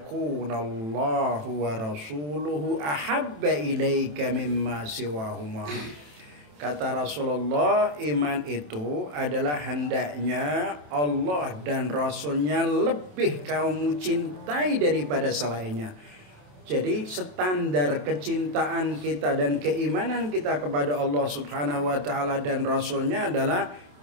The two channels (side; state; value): left; late; 27 ms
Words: wa rasuluhu ahabba ilaika mimma siwahuma. Kata Rasulullah, iman itu adalah hendaknya Allah dan Rasulnya lebih kamu cintai daripada selainnya. Jadi standar kecintaan kita dan keimanan kita kepada Allah Subhanahu wa taala dan Rasulnya adalah